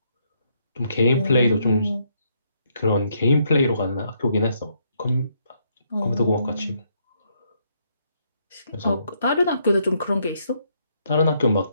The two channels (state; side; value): inverted; both; correlation -0.73